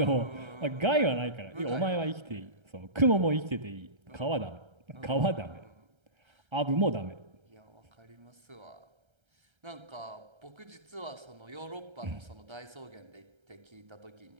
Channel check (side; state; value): left; late; 1.3 ms